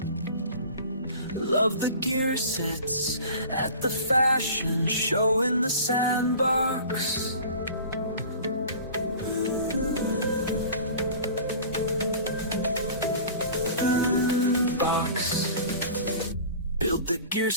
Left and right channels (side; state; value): both; inverted; correlation -0.41